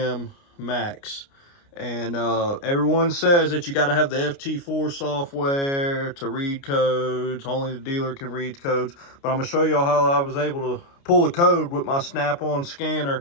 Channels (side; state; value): right; late; 29 ms